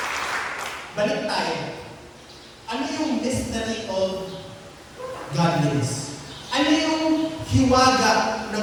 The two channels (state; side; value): identical; both; correlation 1.00